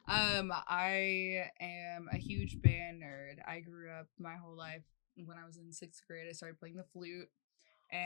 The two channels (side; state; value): right; silent; digital silence